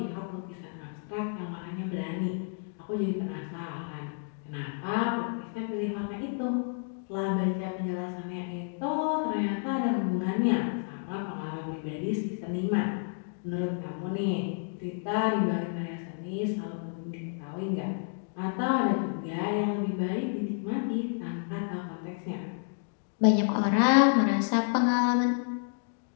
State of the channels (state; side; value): silent; right; 58 dB below the other